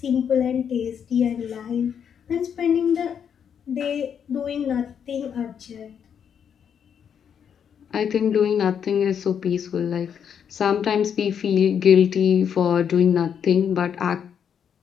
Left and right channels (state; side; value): quieter; right; 7.9 dB